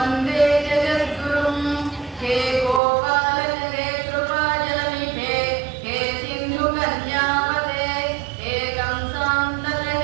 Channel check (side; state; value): left; drops out; at 2.8 s